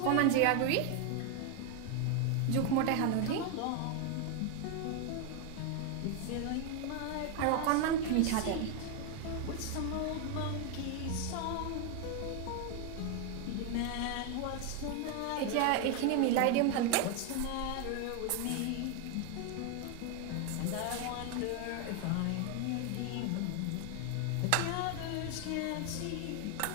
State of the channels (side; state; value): both; different; correlation 0.01